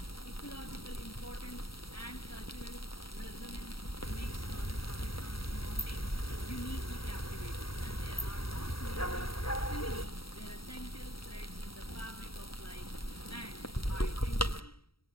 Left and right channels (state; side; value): late; right; 0.75 ms